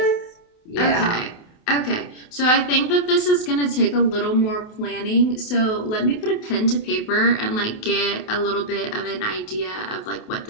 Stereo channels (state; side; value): late; right; 28 ms